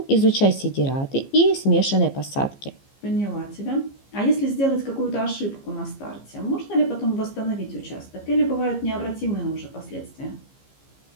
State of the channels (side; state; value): right; late; 15 ms